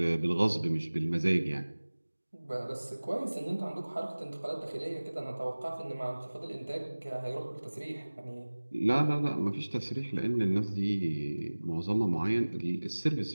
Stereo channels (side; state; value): both; inverted; correlation -1.00